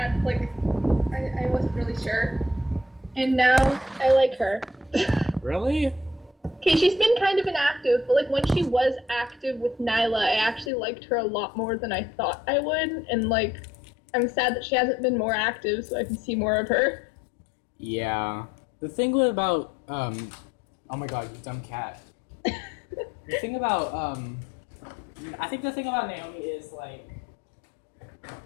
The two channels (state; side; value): drops out; right; at 10.7 s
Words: wasn't really sure. And now I like her. Really? Okay, she's been kind of inactive, but like when she was active with Nyla, I actually liked her a lot more than I thought I would. And like, I'm sad that she hasn't been more active so I can see more of her. Yeah. The thing about, oh my god, you dumb cat. The thing about, I think the thing about Naomi is, like,